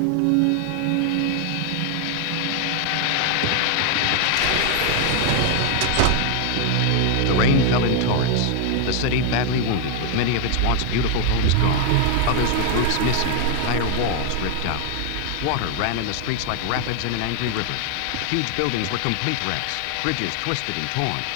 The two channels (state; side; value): different; both; correlation 0.00